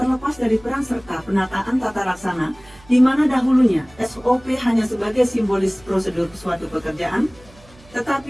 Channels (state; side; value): noise; right; hum, 25 dB below the sound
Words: dari peran serta penataan tata laksana, di mana dahulunya SOP hanya sebagai simbolis prosedur suatu pekerjaan,